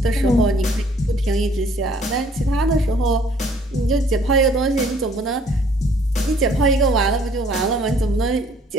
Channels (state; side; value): normal; both; correlation 0.59